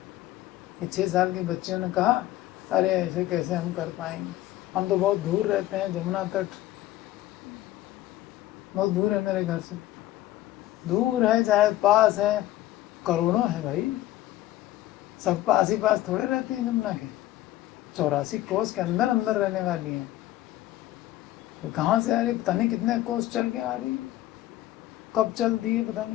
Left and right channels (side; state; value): right; quieter; 14.9 dB